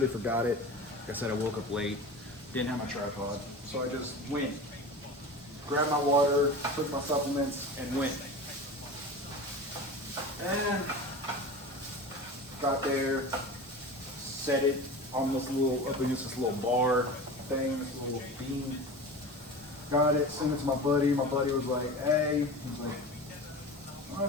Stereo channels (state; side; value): normal; both; correlation 0.33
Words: forgot it. Like I said, I woke up late, didn't have my tripod, so I just went, grabbed my water, took my supplements, and went. And got there, set it on this little, up against this little bar thing, this little beam. Got it, sent it to my buddy. My buddy was like, hey, he's like, I